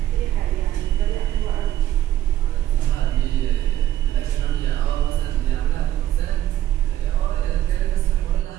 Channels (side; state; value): left; quieter; 12.9 dB